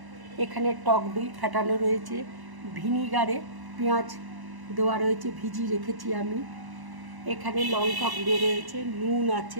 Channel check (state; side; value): late; left; 1.0 ms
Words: এখানে টক দই ফেটানো রয়েছে, ভিনিগারে পেঁয়াজ দেওয়া রয়েছে, ভিজিয়ে রেখেছি আমি। এখানে লঙ্কা গুঁড়ো রয়েছে, নুন